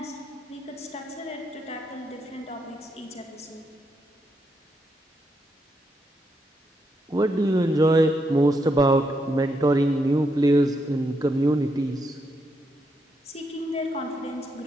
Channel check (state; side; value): normal; both; correlation 0.80